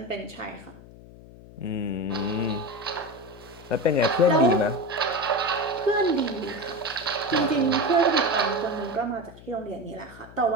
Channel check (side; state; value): left; noise; hum, 19 dB below the sound